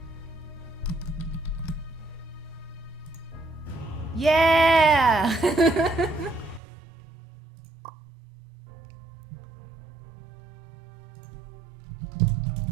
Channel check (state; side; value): drops out; left; at 6.6 s